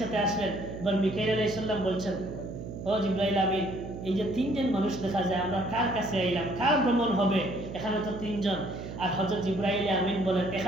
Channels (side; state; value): right; noise; hum, 9 dB below the sound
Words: আসলেন। এবার মিকাইল আলাইহিস সালাম বলছেন, ও জিবরাইল আমিন, এই যে তিনজন মানুষ দেখা যায়, আমরা কার কাছে আইলাম, কার ভ্রমণ হবে, এখানে তো তিনজন। আর হযরত জিবরাইল আমিন বলেন,